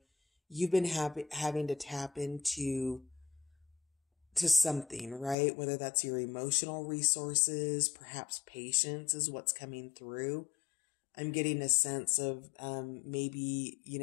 you've been having to tap into something, right? Whether that's your emotional resources, perhaps patience is what's coming through. I'm getting a sense of maybe,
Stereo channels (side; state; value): right; drops out; at 5.4 s